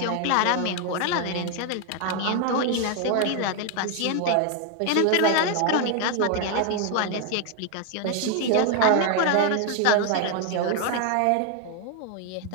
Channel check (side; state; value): both; different; correlation 0.01